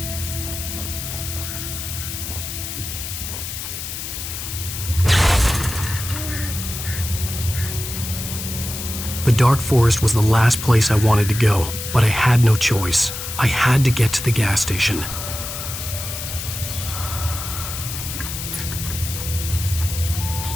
The dark forest was the last place I wanted to go, but I had no choice. I had to get to the gas station.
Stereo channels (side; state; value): left; noise; hiss, 7 dB below the sound